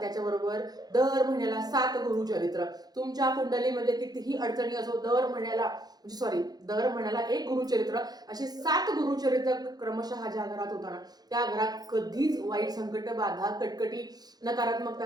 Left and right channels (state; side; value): late; left; 0.19 ms